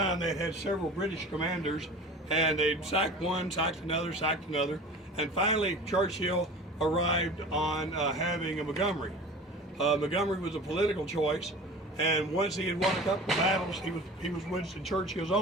they had several British commanders, and they'd sacked one, sacked another, and finally Churchill arrived on having a Montgomery. Montgomery was a political choice, and once he had won a couple of battles, he was Winston Churchill's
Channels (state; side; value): normal; both; correlation 0.39